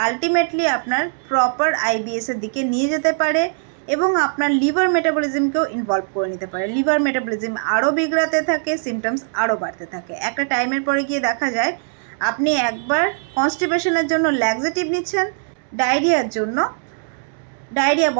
আলটিমেটলি আপনার প্রপার আইবিএসের দিকে নিয়ে যেতে পারে এবং আপনার লিভার মেটাবলিজমকেও ইনভলভ করে নিতে পারে। লিভার মেটাবলিজম আরও বিগড়াতে থাকে, সিমটমস আরও বাড়তে থাকে। একটা টাইমের পরে গিয়ে দেখা যায় আপনি একবার কনস্টিপেশনের জন্য ল্যাক্সেটিভ নিচ্ছেন, ডায়রিয়ার জন্য ডায়রিয়া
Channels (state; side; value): silent; left; 65 dB below the other